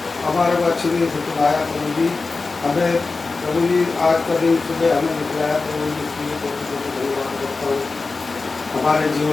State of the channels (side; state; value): right; quieter; 3.9 dB